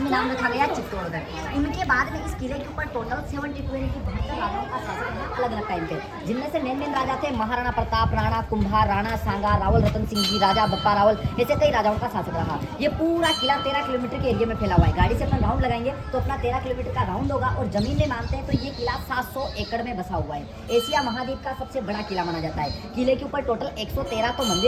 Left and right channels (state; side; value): identical; both; correlation 1.00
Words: नाम रखा गया चित्तौड़गढ़। इनके बाद में इस किले के ऊपर टोटल 72 यानी कि 72 राजाओं का शासन है अलग अलग टाइम पे, जिनमें से मेन राजा थे महाराणा प्रताप, राणा कुंभा, राणा सांगा, रावल रतन सिंह जी, राजा बप्पा रावल, ऐसे कई राजाओं का शासन रहा। ये पूरा किला 13 किलोमीटर के एरिया में फैला हुआ है। गाड़ी से अपना राउंड लगाएंगे तो अपना 13 किलोमीटर का राउंड होगा और जमीन में मानते हैं तो ये किला 700 एकड़ में बसा हुआ है। एशिया महाद्वीप का सबसे बड़ा किला माना जाता है। किले के ऊपर टोटल 113 तो